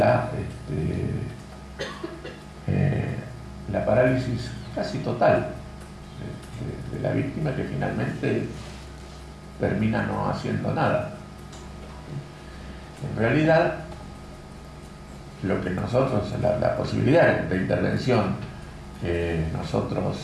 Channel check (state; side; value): identical; both; correlation 1.00